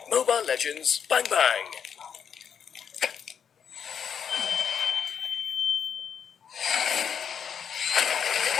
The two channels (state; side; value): quieter; right; 7.6 dB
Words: Mobile Legends Bang Bang.